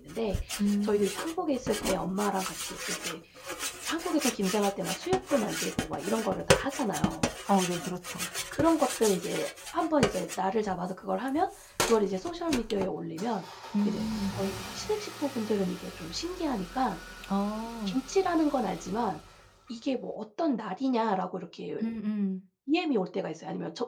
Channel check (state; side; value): identical; both; correlation 1.00